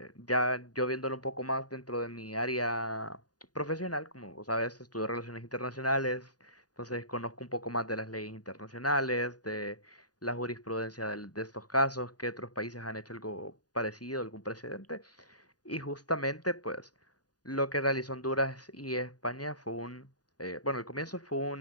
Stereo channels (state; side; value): late; right; 0.68 ms